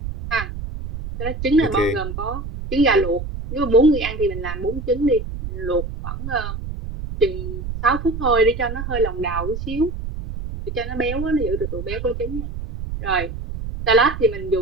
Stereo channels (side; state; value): right; noise; rumble, 7 dB below the sound